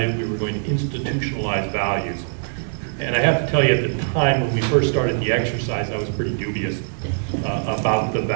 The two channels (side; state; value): left; silent; 64 dB below the other